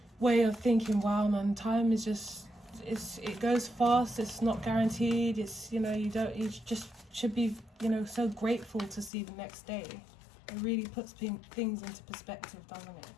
way of thinking, wow man, time is just, it goes fast, it's not guaranteed, it's, you know, you just should be, you know, so grateful to see the next day. It really puts things into perspective, doesn't it?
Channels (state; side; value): drops out; right; at 9.1 s